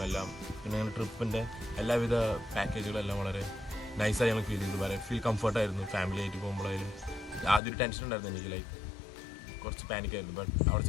എല്ലാം, പിന്നെ ഞങ്ങളുടെ ട്രിപ്പിൻ്റെ എല്ലാവിധ പാക്കേജുകളെല്ലാം വളരെ നൈസായി ഞങ്ങൾ ഫീൽ ചെയ്തു. വളരെ ഫീൽ കംഫർട്ടായിരുന്നു. ഫാമിലി ആയിട്ട് പോകുമ്പോഴായാലും ആദ്യം ഒരു ടെൻഷൻ ഉണ്ടായിരുന്നു എനിക്ക്, ലൈക്ക് കുറച്ച് പാനിക്കായിരുന്നു. ബട്ട് അവിടെ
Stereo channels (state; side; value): drops out; right; at 7.6 s